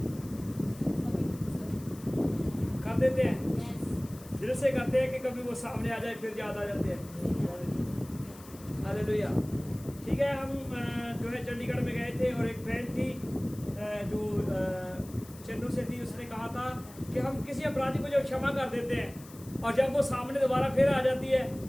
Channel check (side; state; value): left; noise; hiss, 20 dB below the sound